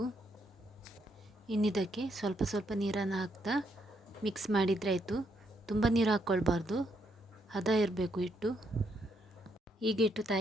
ಇನ್ನಿದಕ್ಕೆ ಸ್ವಲ್ಪ ನೀರನ್ನು ಹಾಕ್ತಾ ಮಿಕ್ಸ್ ಮಾಡಿದರೆ ಆಯಿತು. ತುಂಬ ನೀರು ಹಾಕ್ಕೊಳ್ಬಾರ್ದು, ಹದ ಇರಬೇಕು ಹಿಟ್ಟು. ಈಗ ಹಿಟ್ಟು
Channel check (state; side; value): normal; both; correlation 0.76